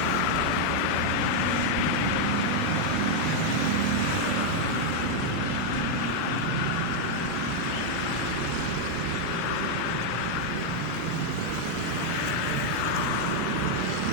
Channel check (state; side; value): different; both; correlation 0.00